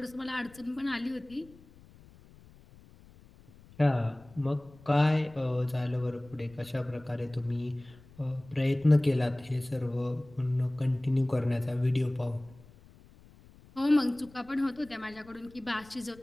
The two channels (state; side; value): noise; left; rumble, 24 dB below the sound